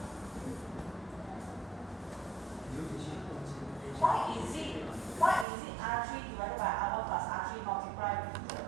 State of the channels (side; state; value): left; drops out; at 5.5 s